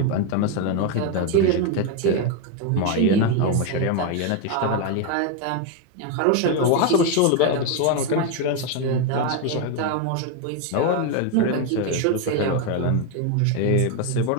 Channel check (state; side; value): different; both; correlation 0.02